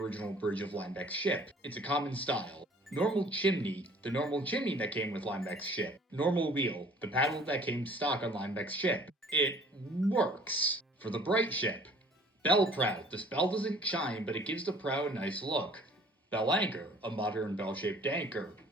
bridge of Linebeck's ship. It's a common style. Normal chimney, the normal chimney that came with Linebeck's ship. Normal wheel, the paddle that came stock on Linebeck's ship. It works. For the bright ship, bell prow, this bell doesn't shine, but it gives the prow a nice look. Bell anchor, a modern bell-shaped anchor.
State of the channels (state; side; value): normal; both; correlation 0.53